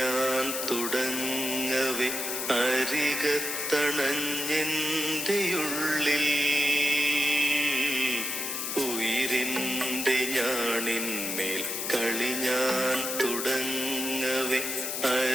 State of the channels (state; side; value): noise; left; hiss, 3 dB below the sound